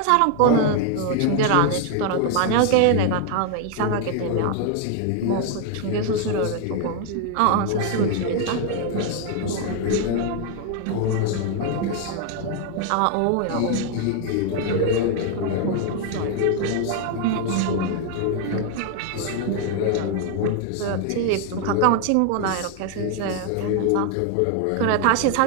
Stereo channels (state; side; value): different; both; correlation 0.00